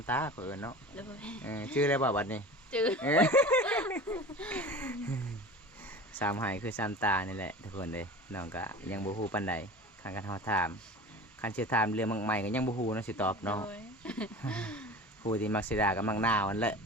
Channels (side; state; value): both; normal; correlation 0.36